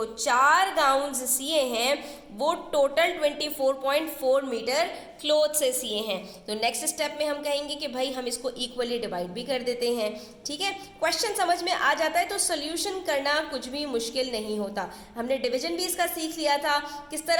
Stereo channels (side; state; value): both; identical; correlation 1.00